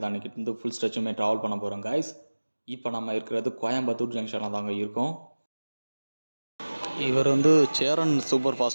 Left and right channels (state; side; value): inverted; both; correlation -1.00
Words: தான் இன்னைக்கு வந்து ஃபுல் ஸ்ட்ரெச்சுமே ட்ராவல் பண்ண போகிறோம் கைஸ். இப்போ நம்ம இருக்கிறது கோயம்புத்தூர் ஜங்ஷனில் தாங்க இருக்கோம். இவர் வந்து சேரன் சூப்பர்